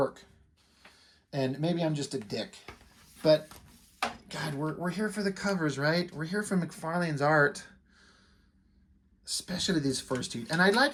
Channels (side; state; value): both; identical; correlation 1.00